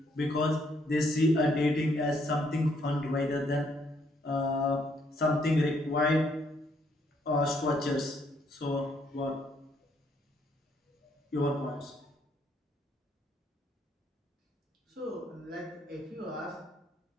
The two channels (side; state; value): both; normal; correlation 0.70